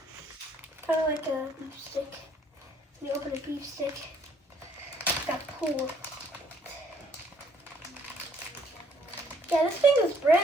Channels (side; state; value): both; normal; correlation 0.64